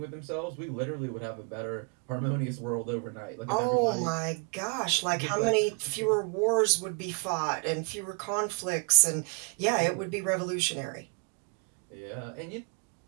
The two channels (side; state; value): left; quieter; 34.3 dB